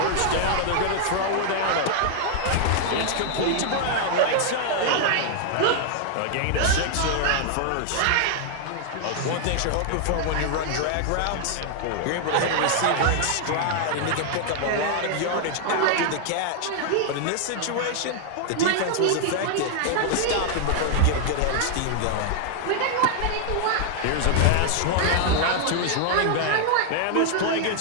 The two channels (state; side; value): different; both; correlation 0.00